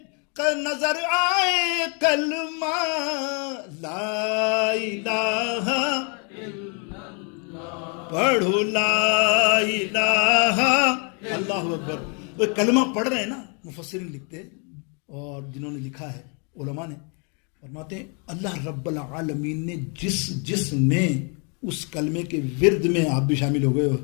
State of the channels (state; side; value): quieter; right; 36.8 dB